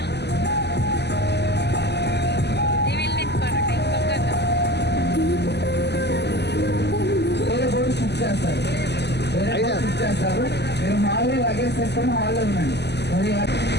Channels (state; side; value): late; right; 0.50 ms